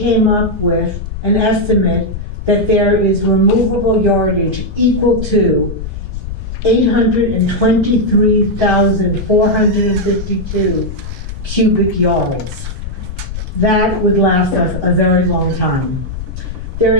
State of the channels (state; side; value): noise; left; rumble, 8 dB below the sound